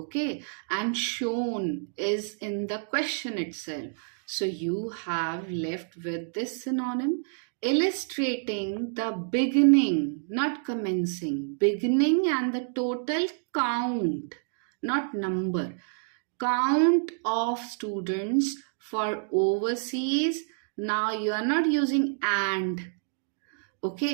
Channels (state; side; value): silent; left; digital silence